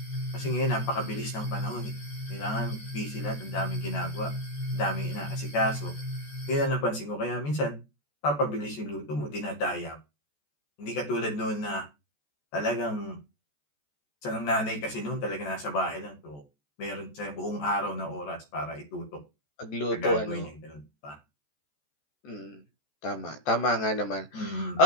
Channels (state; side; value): late; right; 14 ms